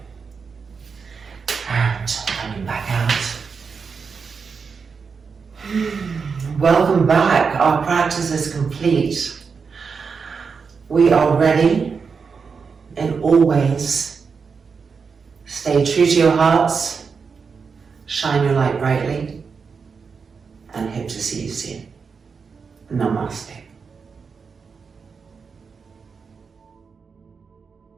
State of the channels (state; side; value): quieter; left; 5.5 dB